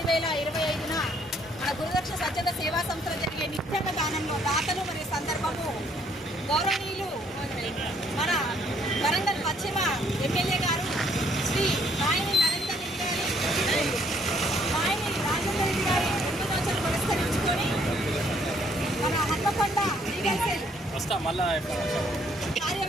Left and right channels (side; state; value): both; normal; correlation 0.66